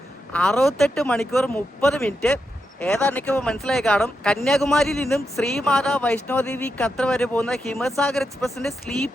68 മണിക്കൂർ 30 മിനിറ്റ്. ഏതാണ്ട് ഇപ്പോൾ മനസ്സിലായി കാണും. കന്യാകുമാരിയിൽ നിന്നും ശ്രീമാതാ വൈഷ്ണോദേവി കത്ര വരെ പോകുന്ന ഹിമസാഗർ എക്സ്പ്രസിന്റെ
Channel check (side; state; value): both; normal; correlation 0.85